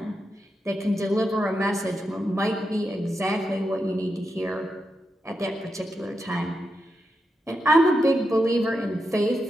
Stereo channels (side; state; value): both; normal; correlation 0.87